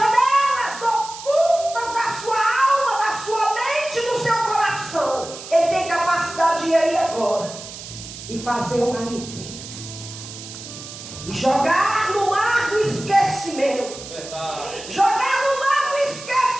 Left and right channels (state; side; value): noise; right; hiss, 13 dB below the sound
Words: ocultas da sua alma, da sua mente, do seu coração. Ele tem capacidade de ir aí agora e fazer uma limpeza e jogar no mar do esquecimento. Jogar no mar do